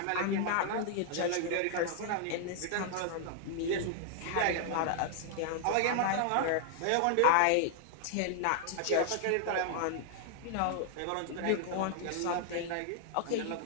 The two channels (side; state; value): both; different; correlation 0.00